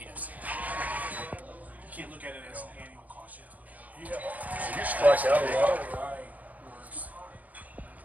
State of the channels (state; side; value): late; left; 0.077 ms